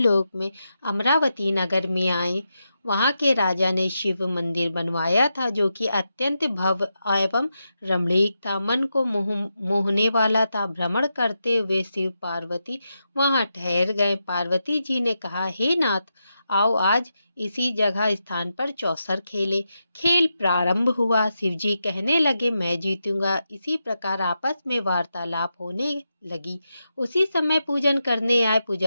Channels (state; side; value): inverted; both; correlation -0.87